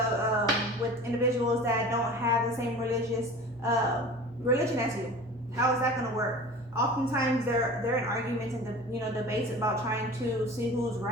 with individuals that don't have the same religion as you. How is that going to work? Oftentimes they're in arguments and debates about trying to see who's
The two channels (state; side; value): normal; both; correlation 0.39